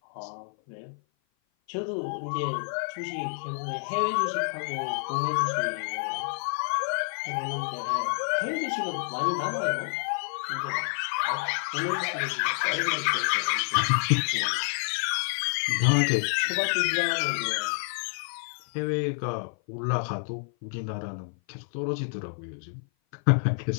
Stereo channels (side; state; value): right; silent; 55 dB below the other